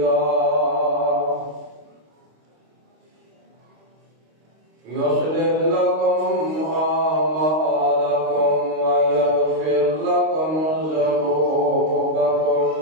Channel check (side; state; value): left; late; 26 ms